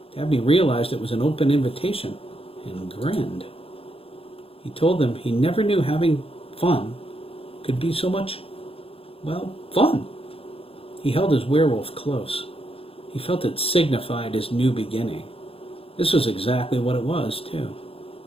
Dabney realized it was an open invitation and grinned. He told them he never knew having fun could be so much, fun. He held his werewolf close. He felt it signified his new beginning. This was exactly what it was, too.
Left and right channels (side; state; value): right; late; 0.27 ms